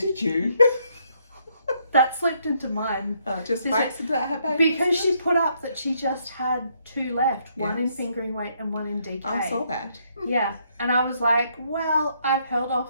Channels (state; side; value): inverted; both; correlation -0.72